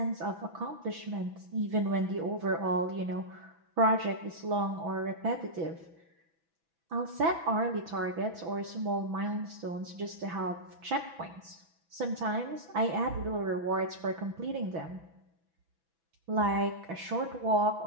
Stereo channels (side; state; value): left; late; 6.1 ms